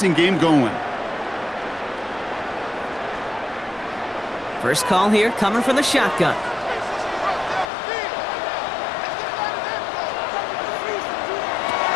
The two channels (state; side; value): drops out; right; at 7.7 s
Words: game going. First call here coming from the shotgun.